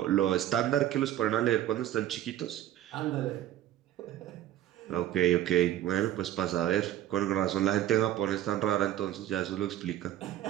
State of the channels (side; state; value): left; quieter; 12.5 dB